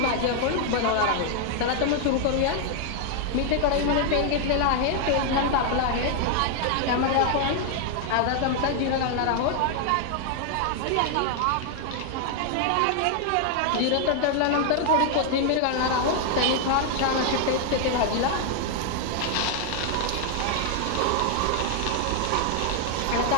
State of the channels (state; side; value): different; both; correlation 0.00